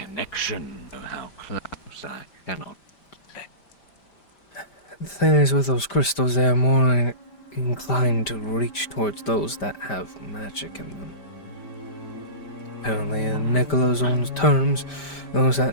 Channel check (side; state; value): right; late; 5.1 ms